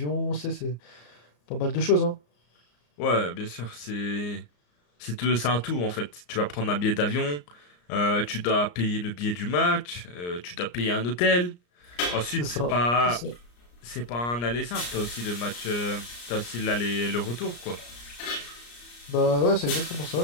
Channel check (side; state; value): right; late; 34 ms